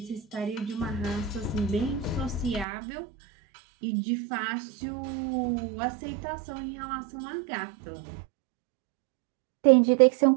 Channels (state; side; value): drops out; left; at 2.7 s